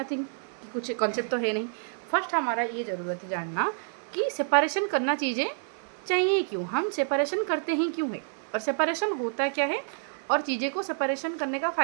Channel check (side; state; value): left; silent; digital silence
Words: कुछ कॉन्सेप्ट तो है नहीं। फर्स्ट हमारा ये ज़रूरत है जानना कि सेपरेशन करना चीज़ें चाहिए क्यों, हम सेपरेशन करते हैं क्यों है, और सेपरेशन होता क्या है, और चीज़ें को सेपरेशन करने का